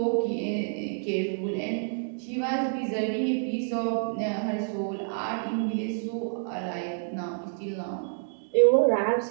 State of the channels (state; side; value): silent; left; digital silence